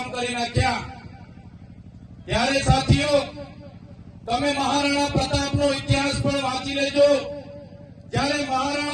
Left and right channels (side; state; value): both; identical; correlation 1.00